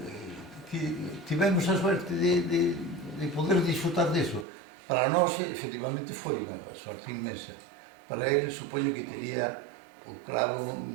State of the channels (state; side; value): drops out; left; at 4.5 s